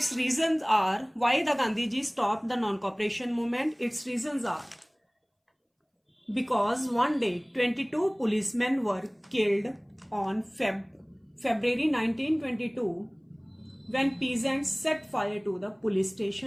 reasons are why the Gandhiji stopped the non-cooperation movement. Its reasons are because one day 22 policemen were killed on February 1922 when peasants set fire to the police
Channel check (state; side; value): identical; both; correlation 1.00